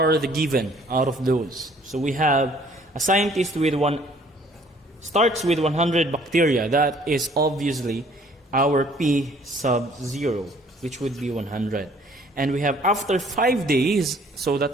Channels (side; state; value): both; normal; correlation 0.58